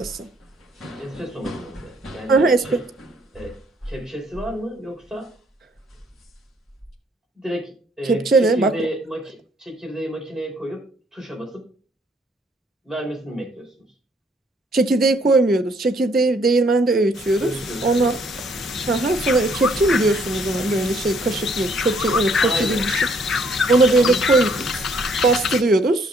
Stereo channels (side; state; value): both; normal; correlation 0.65